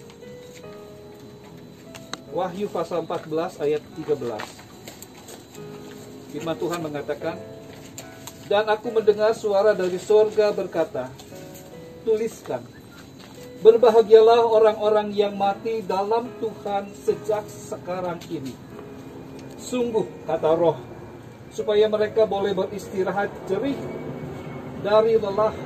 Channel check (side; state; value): both; identical; correlation 1.00